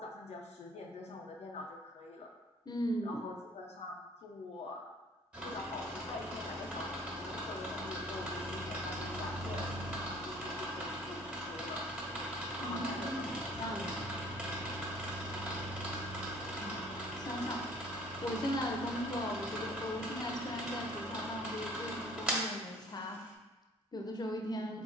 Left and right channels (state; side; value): normal; both; correlation 0.53